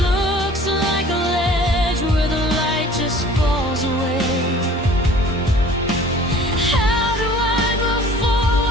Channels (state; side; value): normal; both; correlation 0.48